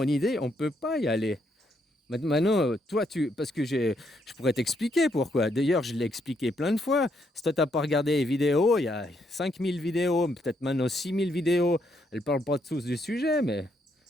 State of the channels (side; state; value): both; normal; correlation 0.75